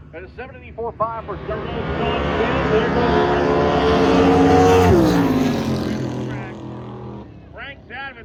And a 7:84.5 for Sean Frank's out of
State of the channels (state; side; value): identical; both; correlation 1.00